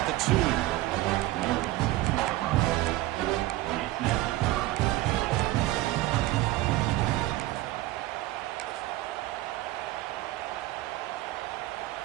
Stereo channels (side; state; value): left; quieter; 16.7 dB